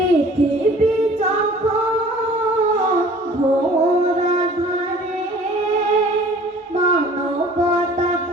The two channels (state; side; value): normal; both; correlation 0.49